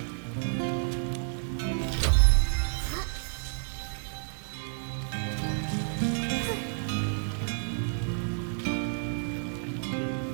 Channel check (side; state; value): left; silent; 58 dB below the other